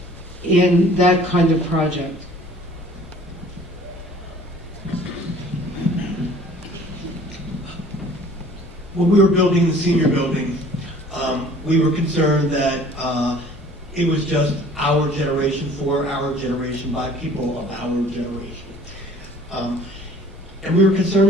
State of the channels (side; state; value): both; normal; correlation 0.51